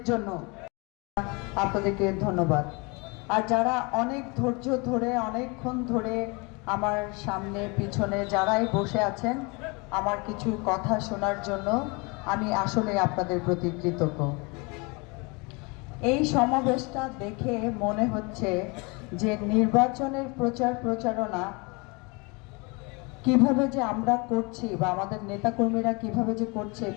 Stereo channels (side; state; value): right; quieter; 29.0 dB